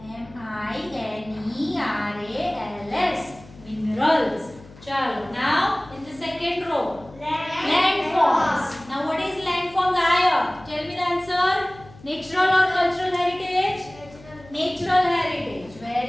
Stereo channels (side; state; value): left; noise; hum, 21 dB below the sound